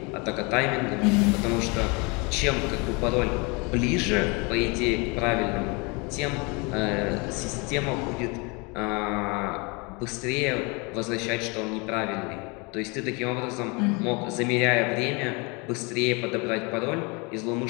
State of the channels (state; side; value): quieter; right; 29.4 dB